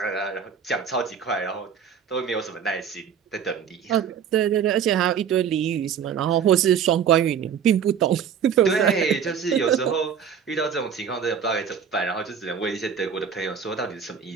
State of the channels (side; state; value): left; quieter; 7.5 dB